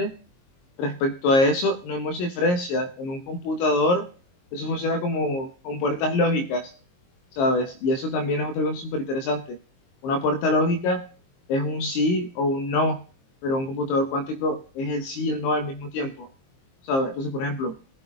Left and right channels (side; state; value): right; late; 22 ms